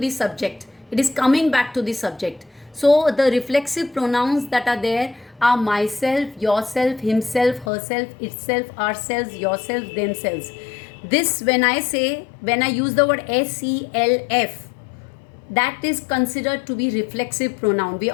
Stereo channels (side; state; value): right; drops out; at 7.7 s